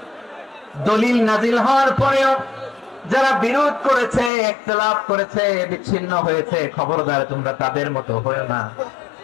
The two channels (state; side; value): drops out; right; at 4.3 s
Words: দলিল নাজিল হওয়ার পরেও যারা বিরোধ করেছে, ইখতিলাফ করেছে, বিচ্ছিন্ন হয়েছে, খবরদার তোমরা তাদের মতো হয়ো না।